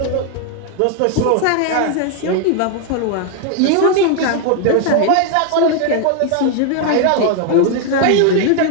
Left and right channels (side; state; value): both; different; correlation 0.01